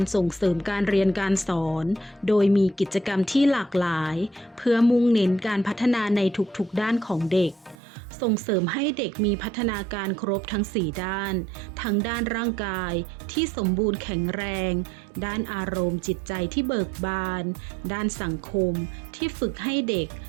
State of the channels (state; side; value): drops out; left; at 7.8 s